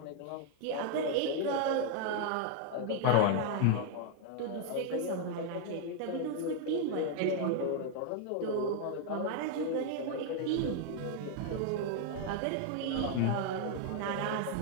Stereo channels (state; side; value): different; both; correlation 0.00